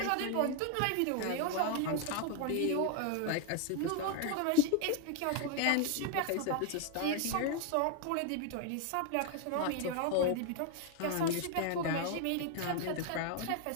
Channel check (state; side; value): different; both; correlation 0.00